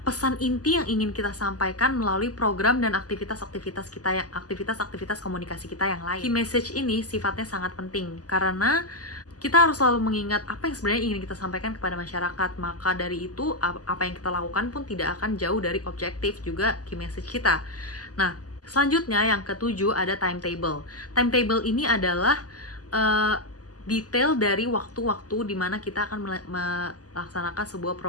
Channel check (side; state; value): right; late; 0.67 ms